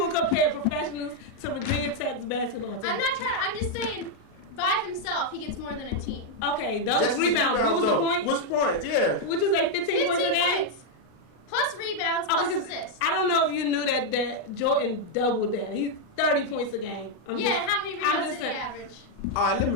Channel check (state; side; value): late; right; 33 ms